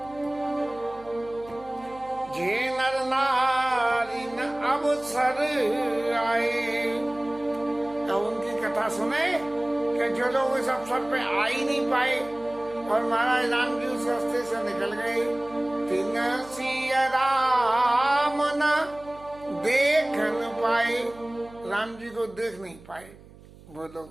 जे नर नारी न अवसर आए, तो उनकी कथा सुने कि जो लोग इस अवसर पे आ ही नहीं पाए और महाराज राम जी उस रास्ते से निकल गए, तिन सिया राम न देख न पाए, राम जी को देख नहीं पाए वो लोग,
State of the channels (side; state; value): right; noise; hum, 22 dB below the sound